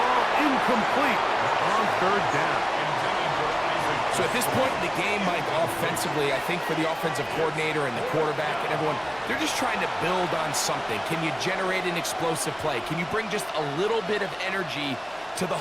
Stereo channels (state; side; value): identical; both; correlation 1.00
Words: incomplete on 3rd down. So at this point in the game, Mike, offensively, I think for the offensive coordinator and the quarterback and everyone, they're just trying to build on something. Can you generate an explosive play? Can you bring just a little bit of energy to the